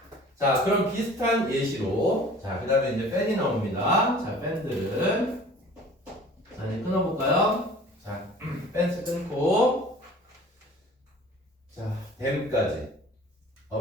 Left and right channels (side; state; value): both; normal; correlation 0.46